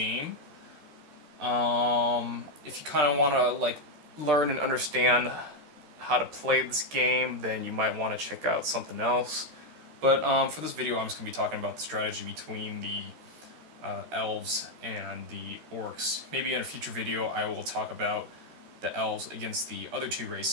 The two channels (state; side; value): late; left; 13 ms